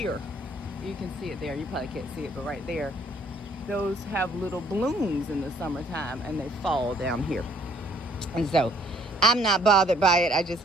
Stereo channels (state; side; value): normal; both; correlation 0.62